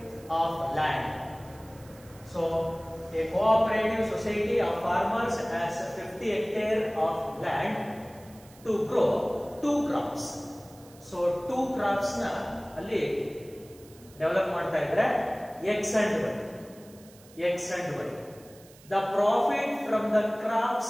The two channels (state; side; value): noise; right; hiss, 24 dB below the sound